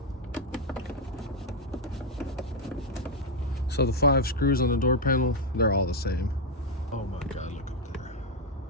So the 5 screws on the door panel, they're all the same. Oh my God, look up there.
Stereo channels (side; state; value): both; normal; correlation 0.03